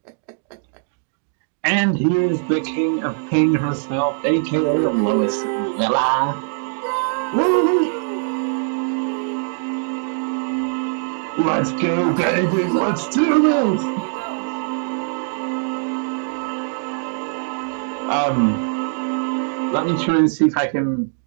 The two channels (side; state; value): left; silent; digital silence